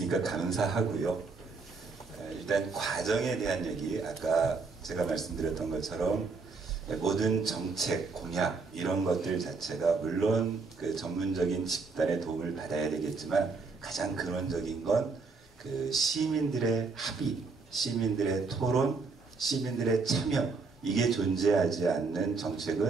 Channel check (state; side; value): quieter; left; 4.3 dB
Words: 감사하고요. 일단 과정에 대한 얘기, 아까 제가 말씀드렸던 것처럼 모든 정책, 공약 이런 것들 자체가 물론 그 전문적인 집단의 도움을 받아야 되겠지만 가장 근원적인 건 그 시민들의 합의, 시민들의 토론, 시민들의 참여, 이게 존재하지 않는